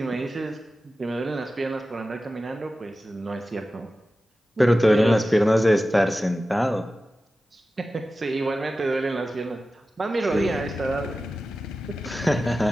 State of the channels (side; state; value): both; normal; correlation 0.94